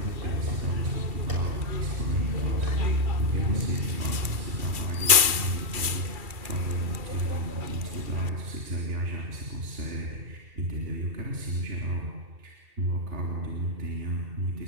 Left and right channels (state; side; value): late; left; 2.7 ms